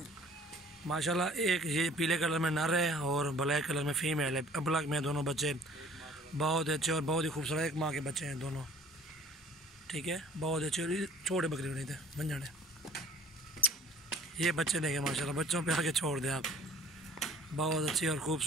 माशाल्लाह। एक ये पीले कलर में नर है और ब्लैक कलर में फीमेल है। ब्लैक में दोनों बच्चे बहुत अच्छे और बहुत ही खूबसूरत, एक माँ के बच्चे हैं दोनों, ठीक है। बहुत अच्छे और छोटे बकरी नहीं थे बन जाने। ये बच्चे देखें माशाल्लाह, बच्चों पे आके छोड़ दें आप। बहुत अच्छी और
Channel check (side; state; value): both; normal; correlation 0.52